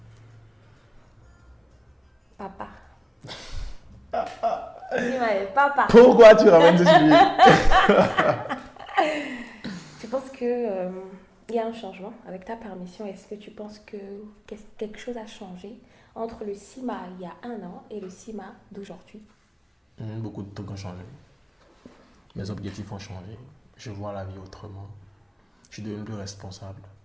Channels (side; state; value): both; identical; correlation 1.00